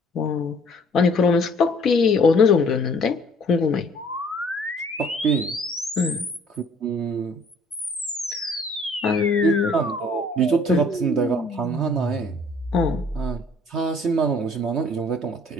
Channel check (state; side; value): normal; both; correlation 0.57